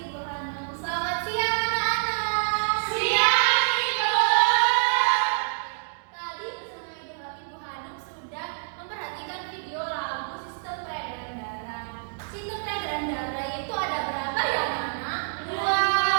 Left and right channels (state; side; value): silent; left; digital silence